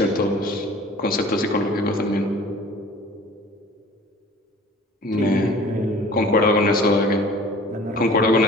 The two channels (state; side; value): normal; both; correlation 0.47